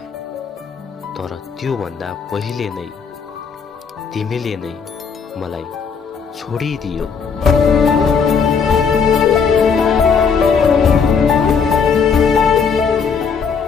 तर त्योभन्दा पहिले नै तिमीले नै मलाई छोडिदियो।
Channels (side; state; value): right; quieter; 6.0 dB